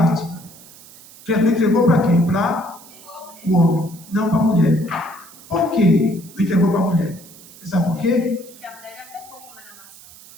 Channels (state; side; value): noise; right; hiss, 21 dB below the sound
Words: Jesus entregou para quem? Para o homem, não para a mulher. Por que não entregou para a mulher? Você sabe por quê? Porque a mulher já pecou com a maçã.